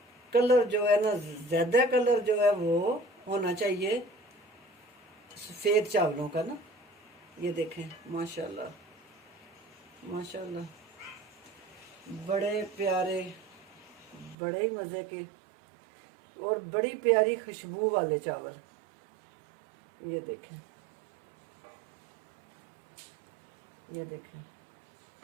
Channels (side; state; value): left; drops out; at 14.4 s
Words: कलर जो है ना, ज्यादा कलर जो है वो होना चाहिए सफेद चावलों का ना। ये देखें माशाल्लाह माशाल्लाह, बड़े प्यारे, बड़े मज़े के और बड़ी प्यारी खुशबू वाले चावल। ये देखें, ये देखें